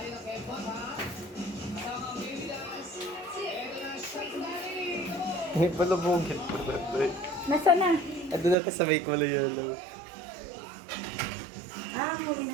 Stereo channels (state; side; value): drops out; left; at 8.6 s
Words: ng Kevbot, ha? Kasama ang baby dance. Eto na, Shake Daddy! Come on! May palabungin pa na ito eh. Nasaan na? Ando na sa may kulay yellow. Huli